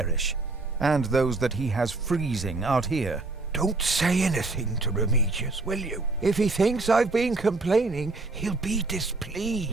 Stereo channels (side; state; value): left; quieter; 3.4 dB